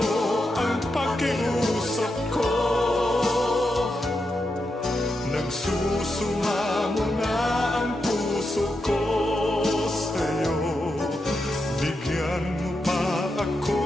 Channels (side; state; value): both; normal; correlation 0.86